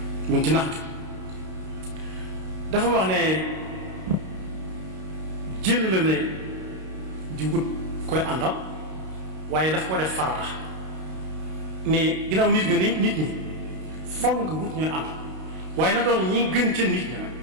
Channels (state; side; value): late; left; 32 ms